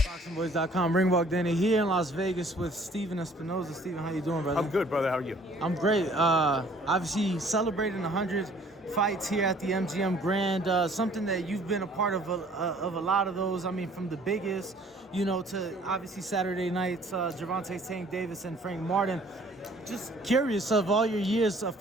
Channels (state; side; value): normal; both; correlation 0.56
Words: ThaBoxingvoice.com. Ring walk Danny here in Las Vegas with Steven Espinoza. Steven, how you doing, brother? I'm good, brother. How are you? I'm great. Obviously celebrating 100 fights here at the MGM Grand. Something that you've been a part of a lot of those. I mean, from the biggest, to obviously Saturday nights, Gervonta, Tank Davis, and Frank Martin. Just curious, of all your years, a